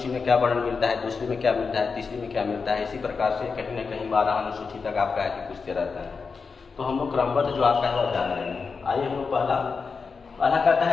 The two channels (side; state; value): right; quieter; 5.0 dB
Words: में क्या वर्णन मिलता है, दूसरी में क्या मिलता है, तीसरी में क्या मिलता है। इसी प्रकार से कहीं ना कहीं 12 अनुसूची तक आपका है कि पूछते रहता है। तो हम लोग क्रमबद्ध जो आपका है वह जान रहे हैं। आइए हम लोग पहला कहता